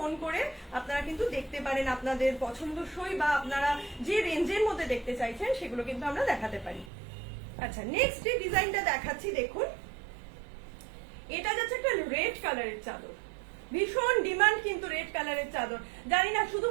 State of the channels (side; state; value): left; drops out; at 6.9 s